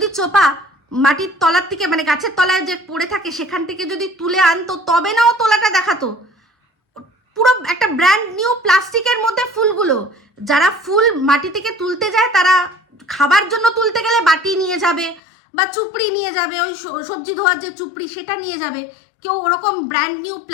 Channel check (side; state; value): right; drops out; at 15.2 s